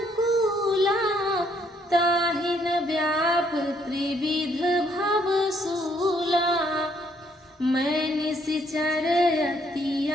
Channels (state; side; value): normal; both; correlation 0.69